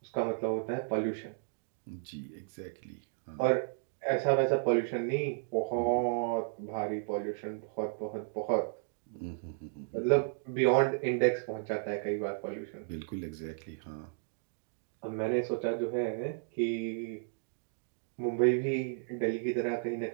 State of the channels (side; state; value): left; silent; digital silence